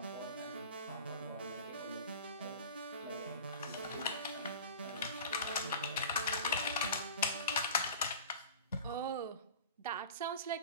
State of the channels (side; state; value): both; inverted; correlation -0.36